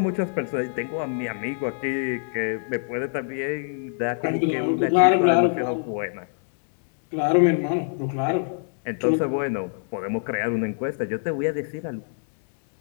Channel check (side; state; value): right; silent; digital silence